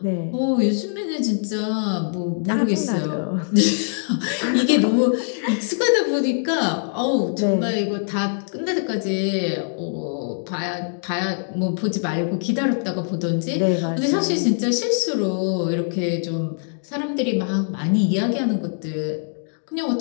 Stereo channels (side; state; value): right; silent; digital silence